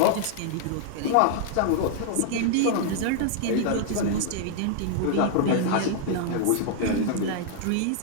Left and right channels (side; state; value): both; different; correlation -0.01